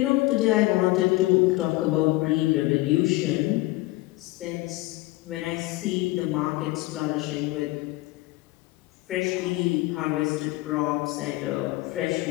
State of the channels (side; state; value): right; quieter; 19.9 dB